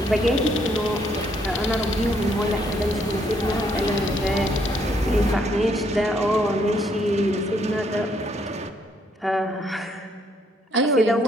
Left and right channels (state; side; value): normal; both; correlation 0.70